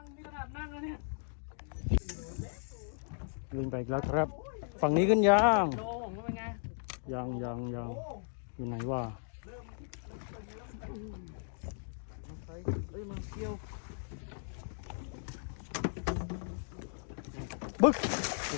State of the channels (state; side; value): silent; right; digital silence